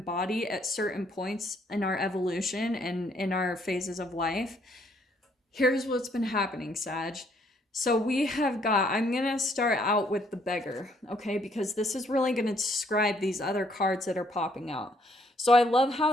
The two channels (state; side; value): normal; both; correlation 0.68